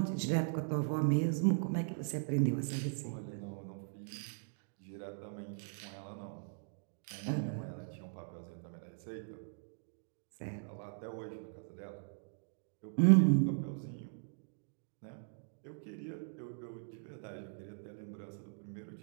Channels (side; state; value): left; silent; digital silence